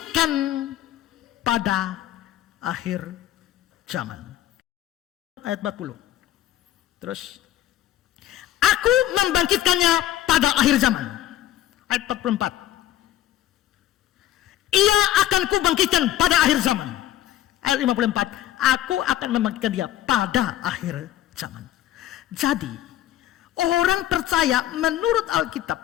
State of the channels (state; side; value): quieter; right; 13.0 dB